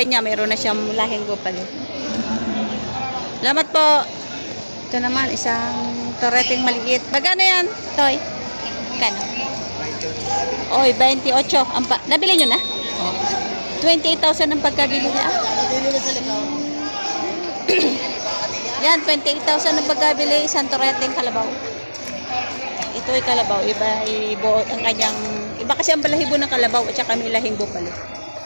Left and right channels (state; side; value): inverted; both; correlation -1.00